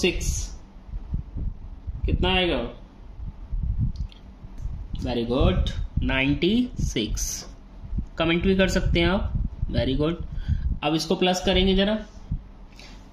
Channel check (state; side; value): identical; both; correlation 1.00